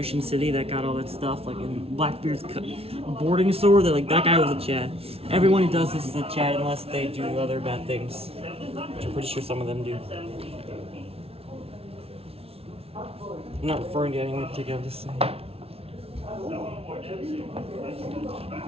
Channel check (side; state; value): left; late; 0.29 ms